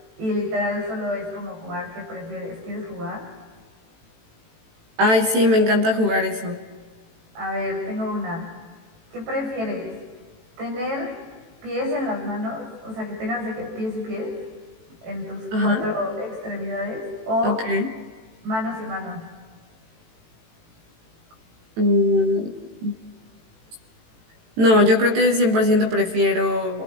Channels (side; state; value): left; late; 18 ms